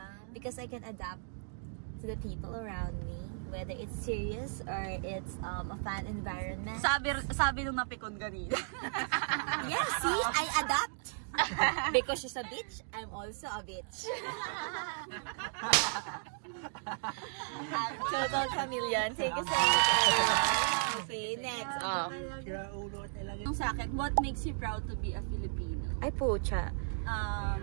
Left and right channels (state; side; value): silent; left; digital silence